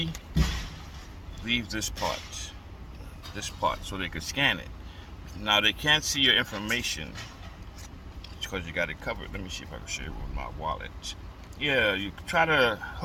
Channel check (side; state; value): both; identical; correlation 1.00